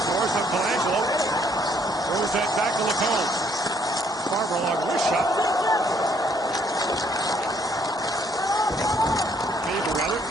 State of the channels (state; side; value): normal; both; correlation 0.67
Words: Morris on Colangelo. Throws that back to Lacombe. Farmer along wrist shot. Faber, rather,